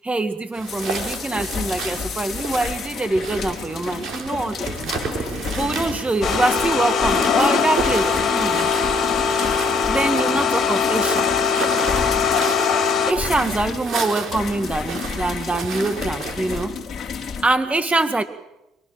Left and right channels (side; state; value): both; normal; correlation 0.69